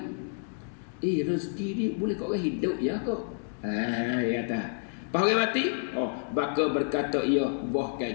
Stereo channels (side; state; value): right; silent; digital silence